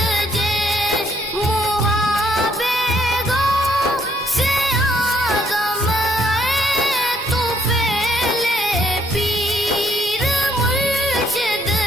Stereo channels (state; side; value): normal; both; correlation 0.69